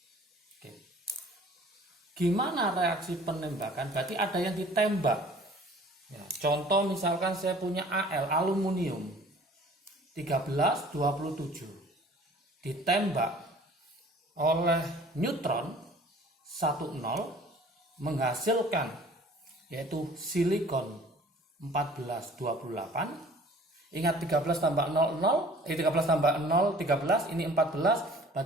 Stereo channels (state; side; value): normal; both; correlation 0.50